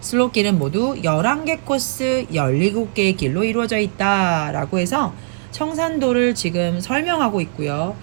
모두 11개 코스 17개의 길로 이루어져 있다 라고 해서 청산도를 지금 설명하고 있고요.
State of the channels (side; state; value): left; silent; 66 dB below the other